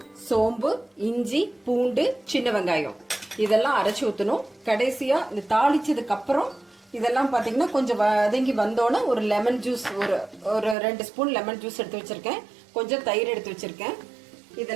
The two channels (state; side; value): drops out; left; at 10.8 s